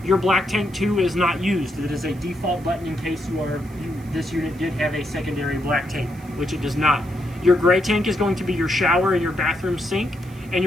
Your black tank 2 is not used. It is a default button in case this unit did have a secondary black tank, which it does not. Your gray tank is going to be your shower and your bathroom sink. And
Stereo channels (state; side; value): noise; right; hiss, 26 dB below the sound